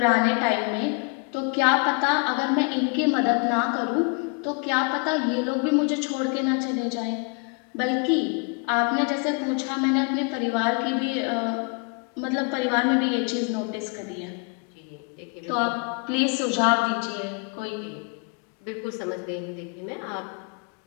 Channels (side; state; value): right; quieter; 33.5 dB